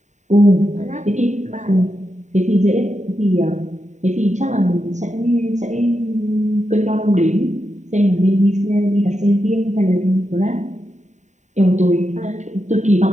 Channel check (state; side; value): late; left; 0.34 ms